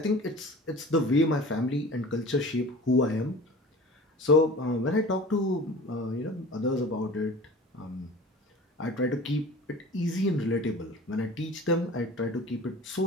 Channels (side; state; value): both; normal; correlation 0.40